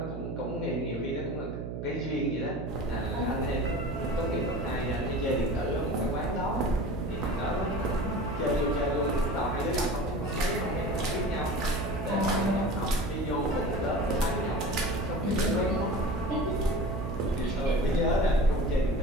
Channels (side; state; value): right; noise; hum, 6 dB below the sound